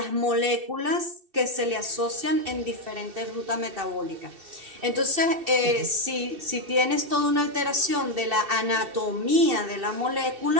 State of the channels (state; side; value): late; left; 2.7 ms